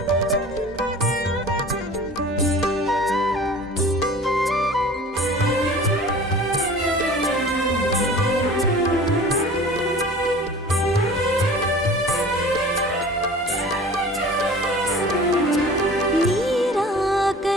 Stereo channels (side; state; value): both; normal; correlation 0.43